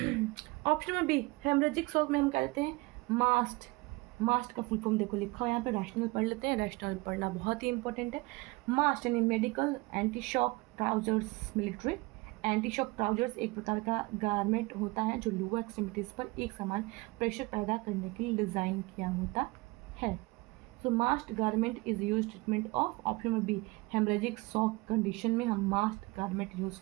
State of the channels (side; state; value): left; quieter; 23.8 dB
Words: Option number B, haemorrhagic shock में हम कहते हैं मास्ट। मास्ट का फुल फॉर्म देखो लिखा हुआ यहाँ पे, रैशनल पढ़ लेते हैं, रैशनल पढ़ना बहुत ही इंपॉर्टेंट है। मास्ट यानी medical anti shock trousers, military anti shock trousers एक प्रकार का गारमेंट होता है जो लोअर एक्सट्रीमिटीज पर एक समान प्रेशर पैदा करने के लिए डिज़ाइन किया होता है। सो MAST garment is use treatment of, option number B, haemorrhagic shock condition में हम मास्ट गारमेंट यूज़